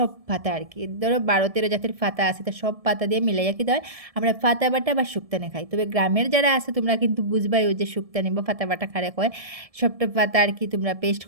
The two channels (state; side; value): late; left; 1.7 ms